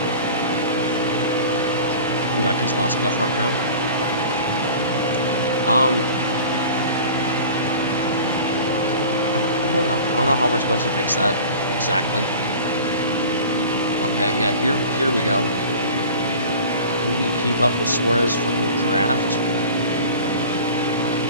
we got Keselowski up front now. I don't know how we're supposed to fix that exactly. Okay, yeah, here we go. We can keep up with Suarez from the draft.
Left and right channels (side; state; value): both; inverted; correlation -0.40